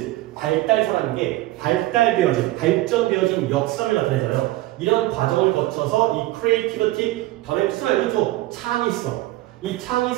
발달사라는 게 발전되어진 역사를 나타내잖아요. 이런 과정을 거쳐서 이 creativity, 단어의 뜻을 알려줘. 창의성. 이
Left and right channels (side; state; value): left; quieter; 17.6 dB